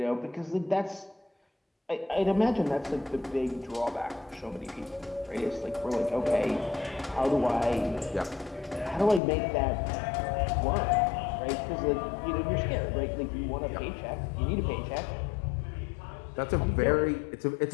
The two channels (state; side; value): drops out; right; at 9.2 s